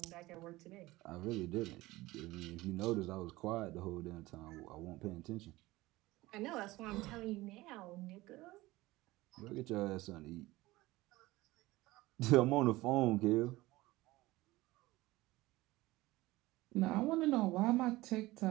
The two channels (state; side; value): quieter; left; 19.1 dB